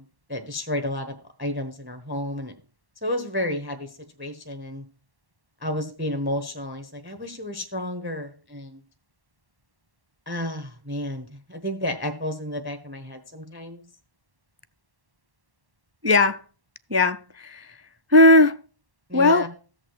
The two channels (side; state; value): left; late; 1.1 ms